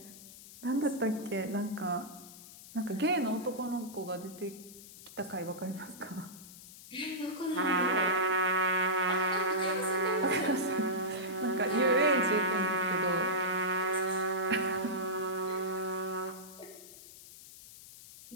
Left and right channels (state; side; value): noise; left; hiss, 17 dB below the sound